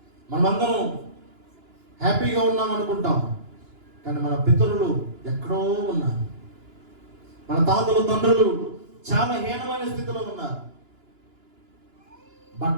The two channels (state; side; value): late; left; 2.9 ms